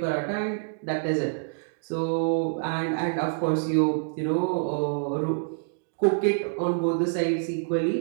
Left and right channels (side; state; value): left; silent; digital silence